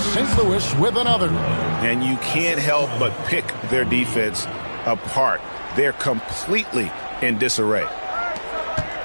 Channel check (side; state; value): both; inverted; correlation -1.00